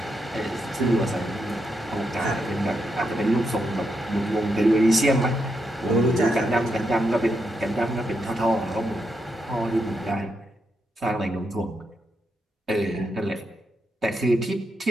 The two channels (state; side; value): normal; both; correlation 0.82